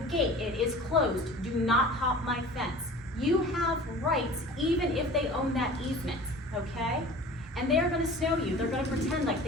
gate, it is closed, do not hop my fence. You have rights even if they own that easement, okay? And they're gonna snow you, they're gonna pretend like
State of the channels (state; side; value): normal; both; correlation 0.41